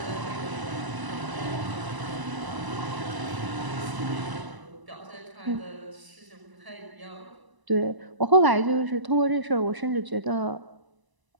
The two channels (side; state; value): left; late; 1.0 ms